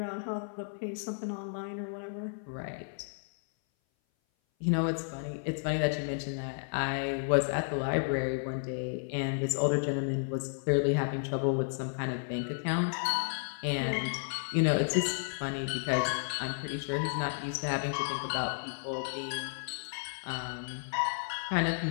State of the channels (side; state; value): right; silent; 56 dB below the other